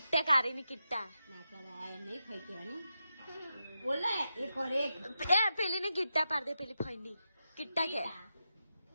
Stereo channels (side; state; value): both; inverted; correlation -0.88